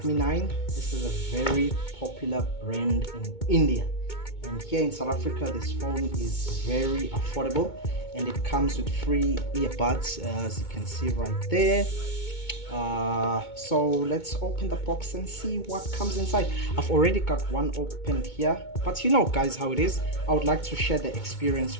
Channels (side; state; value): right; late; 2.2 ms